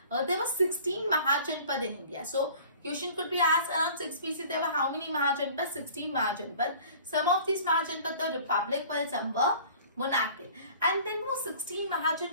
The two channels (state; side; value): inverted; both; correlation -0.47